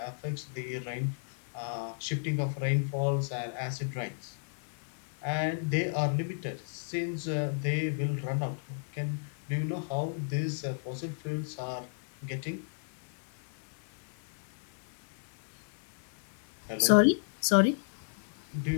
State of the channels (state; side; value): silent; right; digital silence